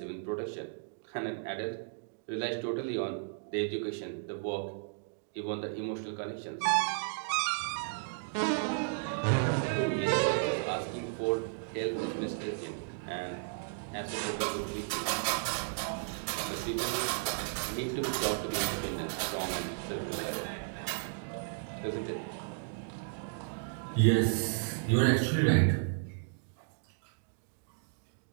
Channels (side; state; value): left; silent; digital silence